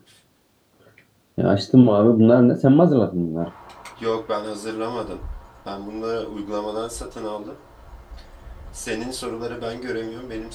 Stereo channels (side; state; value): both; identical; correlation 1.00